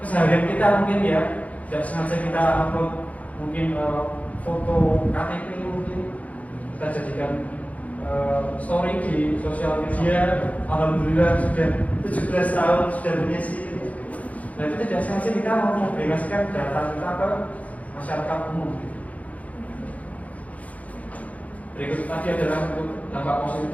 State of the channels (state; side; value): late; right; 0.070 ms